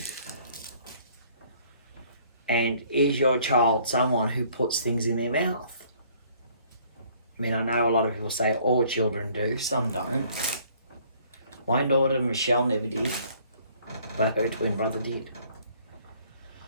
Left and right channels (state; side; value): inverted; both; correlation -0.59